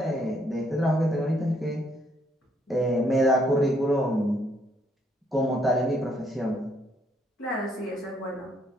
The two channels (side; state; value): both; normal; correlation 0.70